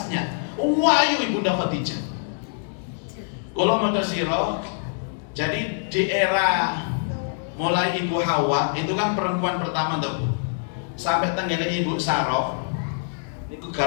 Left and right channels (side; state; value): right; silent; digital silence